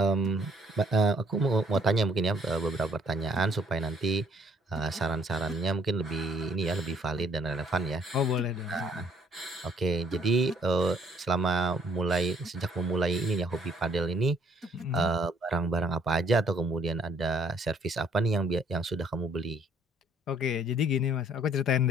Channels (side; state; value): both; normal; correlation 0.63